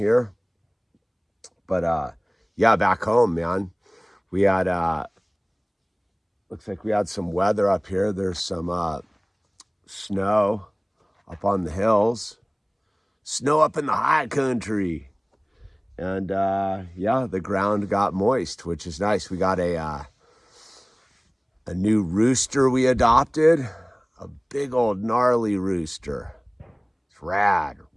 But yeah, back home, man. We had looks like we had some weather up here. There's some snow up on the hills, snow up in the high country, and yeah, the ground got moist, which is nice. We got a new rooster we adopted, a big old gnarly rooster. It's rad,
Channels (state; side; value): identical; both; correlation 1.00